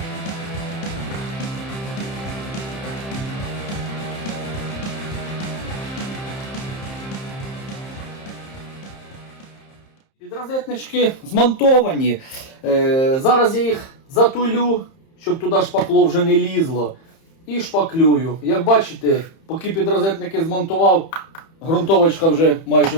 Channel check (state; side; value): late; right; 31 ms